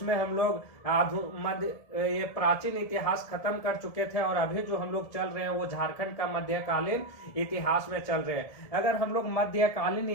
हम लोग ये प्राचीन इतिहास खत्म कर चुके थे और अभी जो हम लोग चल रहे हैं वो झारखंड का मध्यकालीन इतिहास में चल रहे हैं। अगर हम लोग मध्यकालीन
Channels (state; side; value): late; right; 1.7 ms